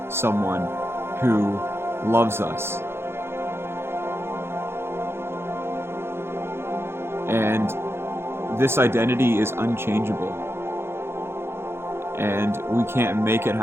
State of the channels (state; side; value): late; left; 0.12 ms